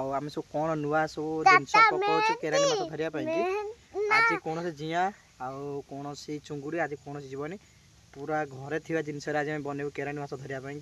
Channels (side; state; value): both; identical; correlation 1.00